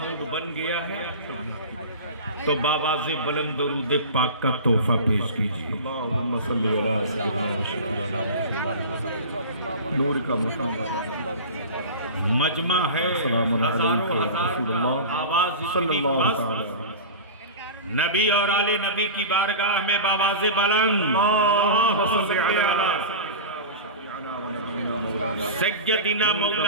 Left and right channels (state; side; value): inverted; both; correlation -0.31